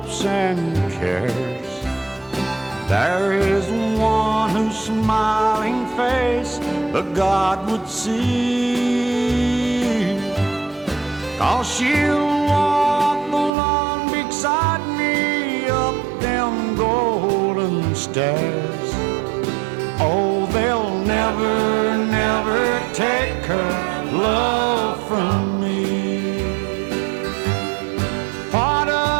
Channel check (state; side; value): drops out; left; at 13.5 s